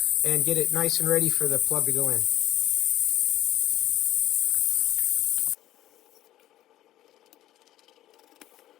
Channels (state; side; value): quieter; right; 13.9 dB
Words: and get it nice and ready for the plug to go in.